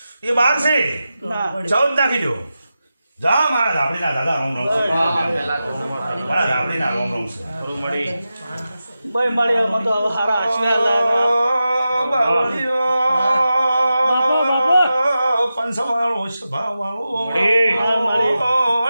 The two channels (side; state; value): both; inverted; correlation -0.92